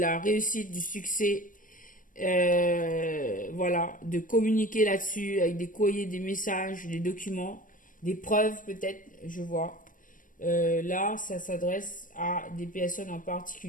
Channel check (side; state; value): right; late; 0.39 ms